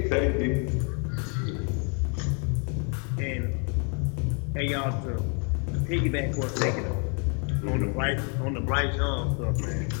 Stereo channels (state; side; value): quieter; right; 37.7 dB